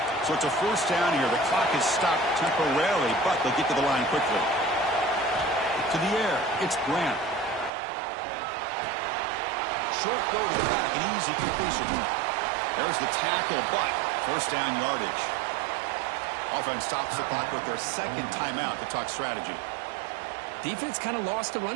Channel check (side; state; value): left; drops out; at 7.7 s